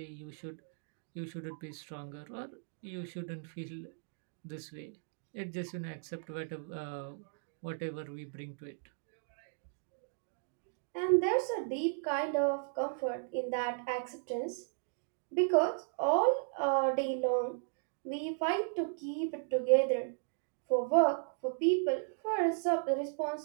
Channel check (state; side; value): silent; left; digital silence